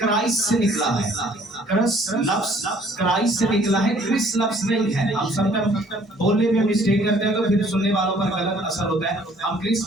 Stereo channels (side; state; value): both; normal; correlation 0.59